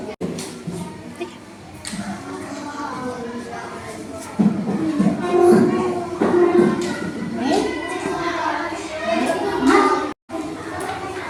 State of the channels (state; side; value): identical; both; correlation 1.00